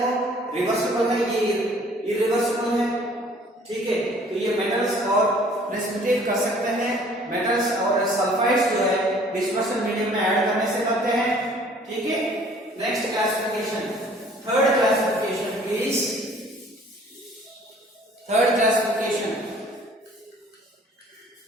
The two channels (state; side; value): normal; both; correlation 0.55